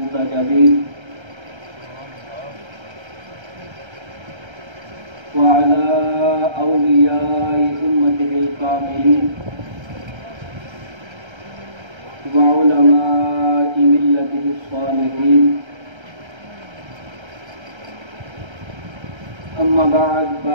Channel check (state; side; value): late; left; 1.3 ms